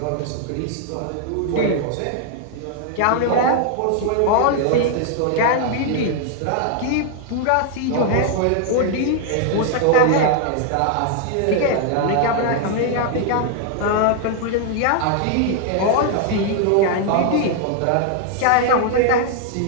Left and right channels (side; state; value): both; different; correlation 0.00